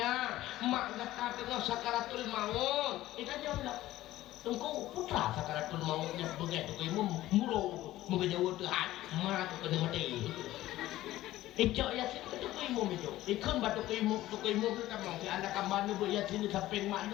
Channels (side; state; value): right; quieter; 15.5 dB